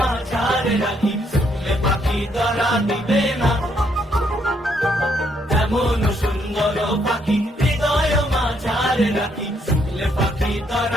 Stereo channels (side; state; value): both; normal; correlation 0.72